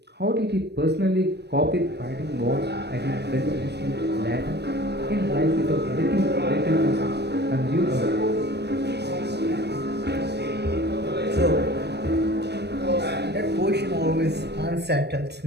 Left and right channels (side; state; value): left; late; 0.49 ms